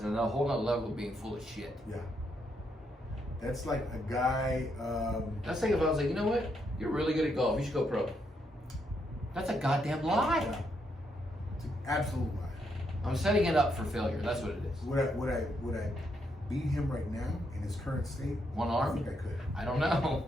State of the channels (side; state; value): both; normal; correlation 0.78